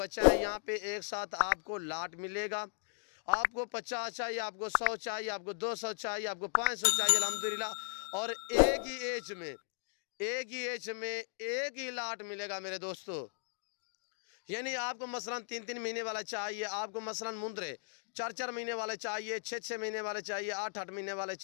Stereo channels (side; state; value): right; silent; digital silence